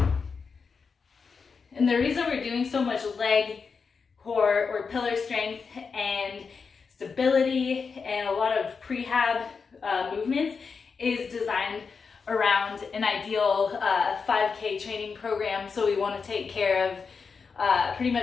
And the reason we're doing so much leg, core, or pillar strength and stability and a lot of prehab movements is designed around an ideal 5K training program. So we want to take care of pretty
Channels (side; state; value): right; quieter; 5.3 dB